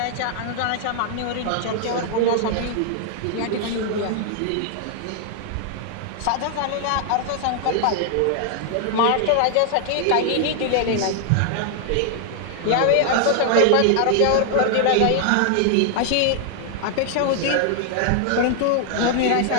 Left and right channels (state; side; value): different; both; correlation 0.00